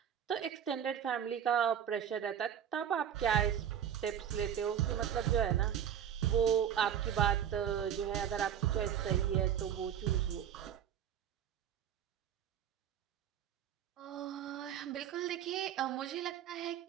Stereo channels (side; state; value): left; quieter; 9.3 dB